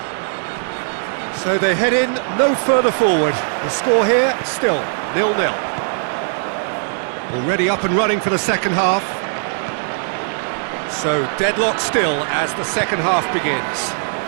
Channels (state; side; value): silent; left; 66 dB below the other